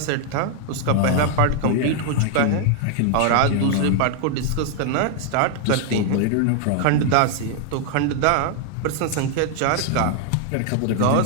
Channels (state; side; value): different; both; correlation 0.00